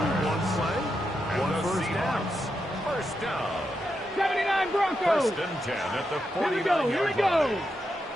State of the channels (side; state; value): both; normal; correlation 0.85